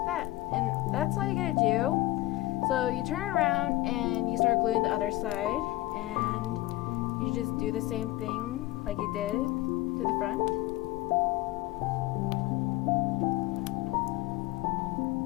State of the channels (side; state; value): right; quieter; 17.8 dB